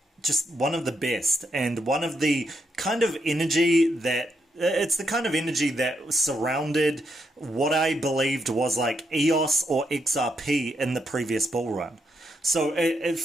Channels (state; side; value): normal; both; correlation 0.80